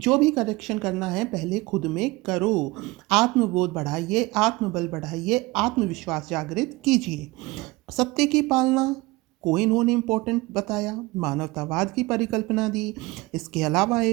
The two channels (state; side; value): quieter; left; 21.8 dB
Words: भी करेक्शन करना है पहले खुद में करो। आत्मबोध बढ़ाइए, आत्मबल बढ़ाइए, आत्मविश्वास जागृत कीजिए। सत्य की पालना को इन्होंने इम्पोर्टेंट बताया, मानवतावाद की परिकल्पना दी। इसके अलावा